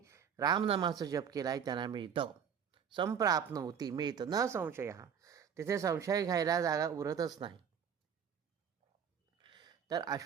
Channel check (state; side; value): quieter; left; 7.7 dB